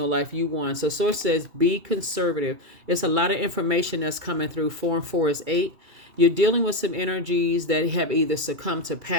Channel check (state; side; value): late; left; 2.7 ms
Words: life. You won. So Source says be conservative. It's a lot of information that's coming through. 4 and 4 is 8. You're dealing with some energies that have either succumbed to